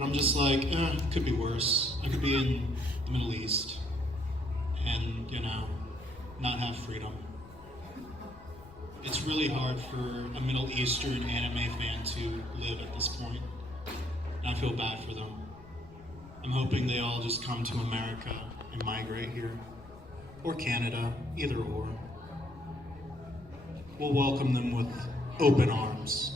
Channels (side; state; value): left; noise; rumble, 20 dB below the sound